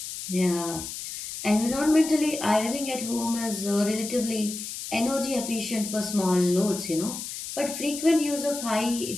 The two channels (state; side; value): noise; left; hiss, 8 dB below the sound